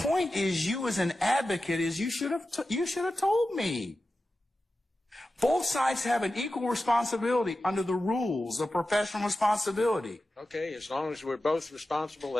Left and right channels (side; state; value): both; normal; correlation 0.93